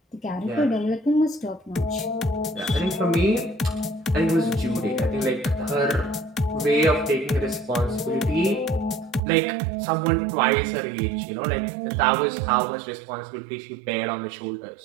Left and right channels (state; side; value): drops out; left; at 9.2 s